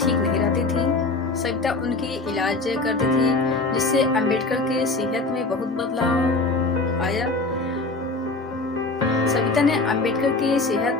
नहीं रहती थी। सविता उनकी इलाज करती थी, जिससे अंबेडकर के सेहत में बहुत बदलाव आया। सविता ने अंबेडकर की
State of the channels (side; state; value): right; quieter; 3.4 dB